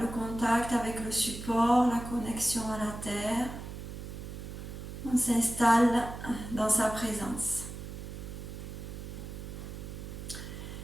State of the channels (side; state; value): right; noise; hum, 9 dB below the sound